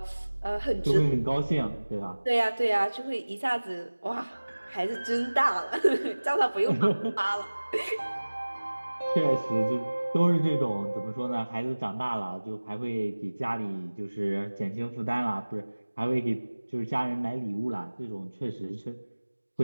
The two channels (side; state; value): both; inverted; correlation -1.00